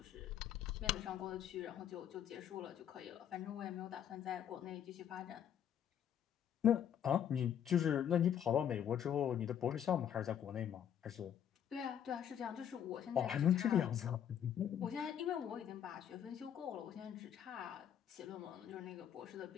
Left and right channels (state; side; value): quieter; right; 9.4 dB